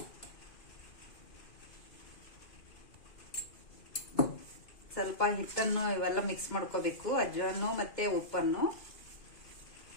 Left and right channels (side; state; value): right; late; 2.4 ms